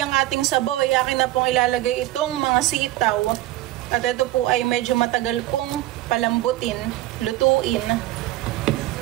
ating sabaw, ay akin na pong ilalagay itong mga sitaw. At ito po ay medyo matagal pong palambutin, lutuin.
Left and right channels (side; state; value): left; quieter; 15.9 dB